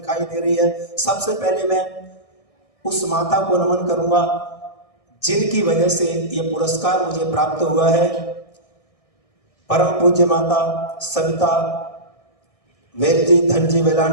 दे रही है। सबसे पहले मैं उस माता को नमन करूंगा जिनकी वजह से ये पुरस्कार मुझे प्राप्त हुआ है, परम पूज्य माता सविता वेलजी धनजी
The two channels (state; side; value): late; right; 1.6 ms